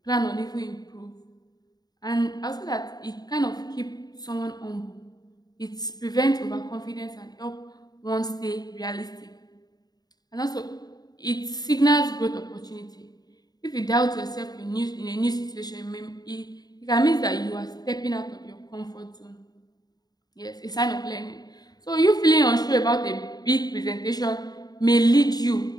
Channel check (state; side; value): late; right; 0.19 ms